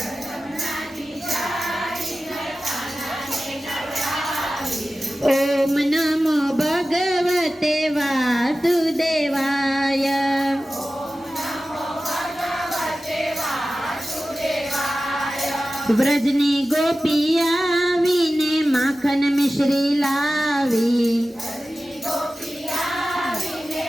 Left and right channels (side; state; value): both; normal; correlation 0.95